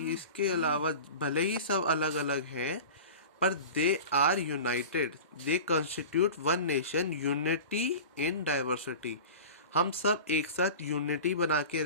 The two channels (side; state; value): both; inverted; correlation -0.35